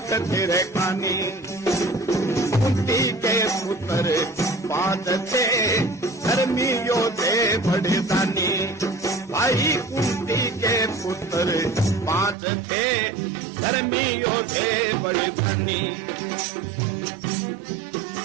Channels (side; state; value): left; drops out; at 12.4 s